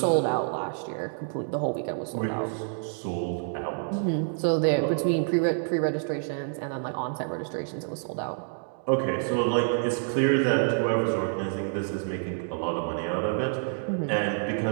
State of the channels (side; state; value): left; silent; digital silence